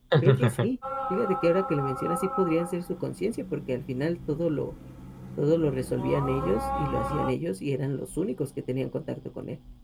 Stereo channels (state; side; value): identical; both; correlation 1.00